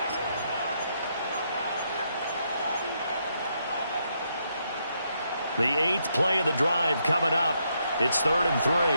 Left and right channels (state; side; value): inverted; both; correlation -0.77